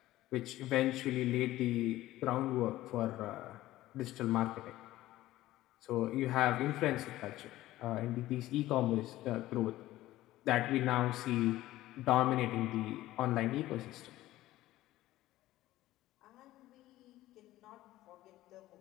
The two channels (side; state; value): right; quieter; 15.8 dB